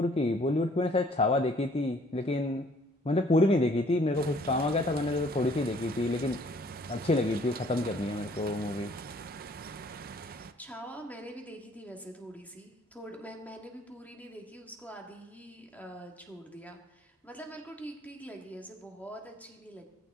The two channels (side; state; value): both; normal; correlation 0.59